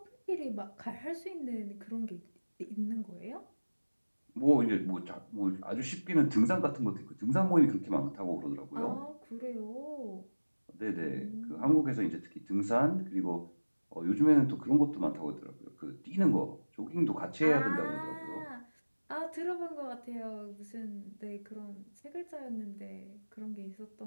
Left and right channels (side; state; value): both; inverted; correlation -1.00